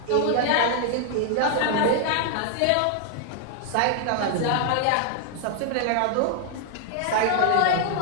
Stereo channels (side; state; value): both; different; correlation 0.00